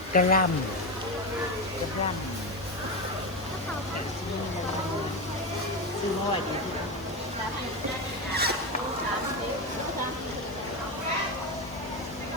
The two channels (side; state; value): left; noise; hiss, 24 dB below the sound